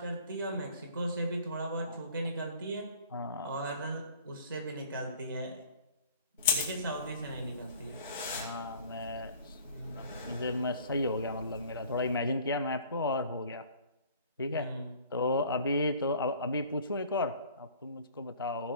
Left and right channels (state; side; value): inverted; both; correlation -0.51